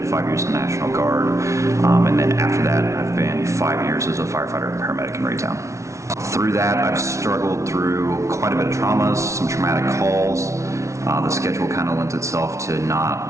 5 years in the National Guard. And then after that, I've been 5 years as a firefighter and paramedic in Raytown. Through that, I've struggled through quite a bit of traumas, some traumatic calls. The schedule kind of lends itself to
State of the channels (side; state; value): left; late; 0.14 ms